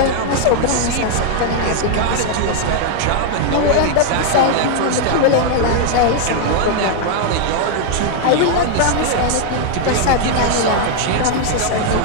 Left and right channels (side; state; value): both; different; correlation 0.00